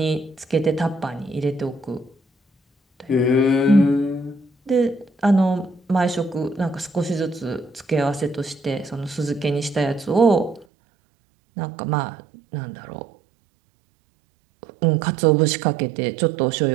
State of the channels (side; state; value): left; drops out; at 10.7 s